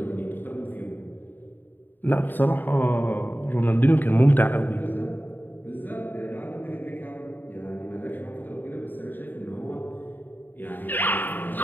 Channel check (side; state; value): right; late; 0.091 ms